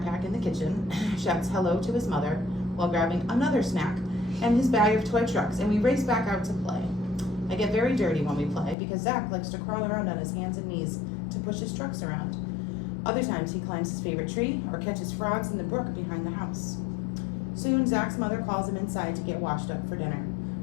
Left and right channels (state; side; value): drops out; right; at 8.8 s